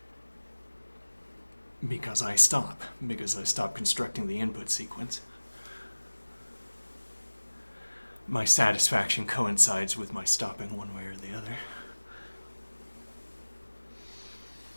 Because I stop constructing the input sequence. My satisfaction coincides with my stopping one way or the other.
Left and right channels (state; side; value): inverted; both; correlation -1.00